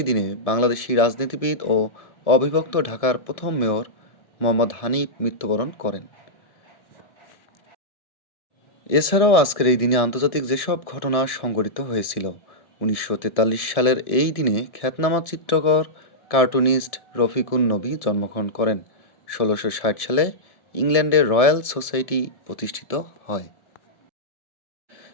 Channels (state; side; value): late; right; 1.7 ms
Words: দিনে বাংলাদেশি রাজনীতিবিদ ও অবিভক্ত ঢাকার প্রথম মেয়র মোহাম্মদ হানিফ মৃত্যুবরণ করেন। এছাড়াও আজকের এই দিনে আন্তর্জাতিক যেসব ঘটনা সংঘটিত হয়েছিল: ১৯৪৩ সালের এই দিনে খ্যাতনামা চিত্রকর কার্টুনিস্ট রফিকুন নবী জন্মগ্রহণ করেন। ১৬৬০ সালে ইংল্যান্ডের রয়্যাল সোসাইটি প্রতিষ্ঠিত হয়।